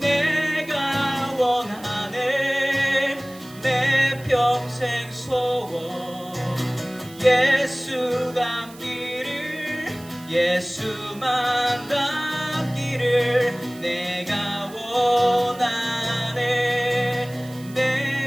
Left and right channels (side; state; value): right; noise; hiss, 21 dB below the sound